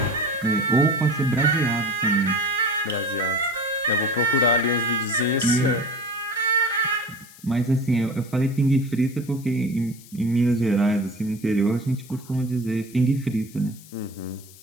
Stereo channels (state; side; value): noise; left; hiss, 21 dB below the sound